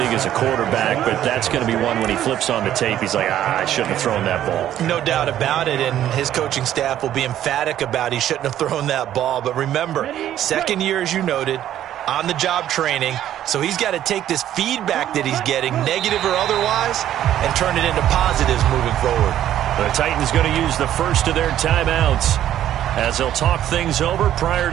as a quarterback, but that's going to be one when he flips on the tape. He's like, I shouldn't have thrown that ball. No doubt about it, and his coaching staff will be emphatic about he shouldn't have thrown that ball. But remember, second year, as you noted, on-the-job training, so he's got to take this feedback that he's getting, negative or otherwise, and turn it into positives moving forward. The Titans going to use the first of their timeouts as they'll talk things over prior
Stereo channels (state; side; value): quieter; left; 11.7 dB